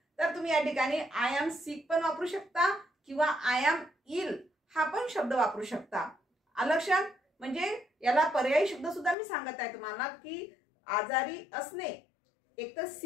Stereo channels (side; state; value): right; drops out; at 9.2 s